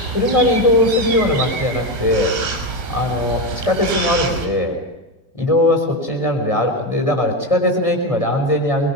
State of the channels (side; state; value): right; late; 1.6 ms